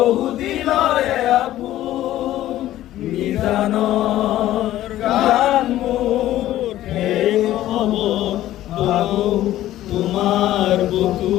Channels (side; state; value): right; quieter; 13.9 dB